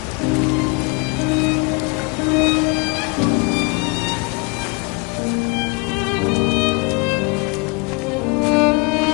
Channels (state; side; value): quieter; right; 29.3 dB